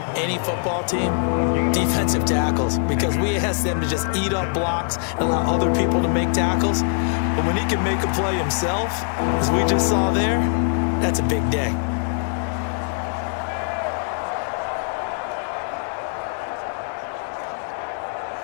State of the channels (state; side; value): silent; right; 64 dB below the other